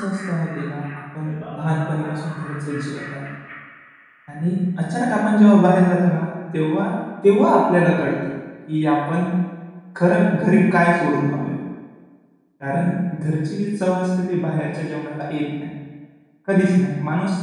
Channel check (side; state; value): both; identical; correlation 1.00